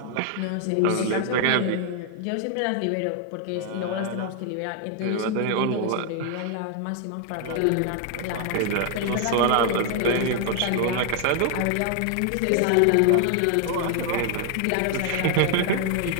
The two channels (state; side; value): different; both; correlation 0.00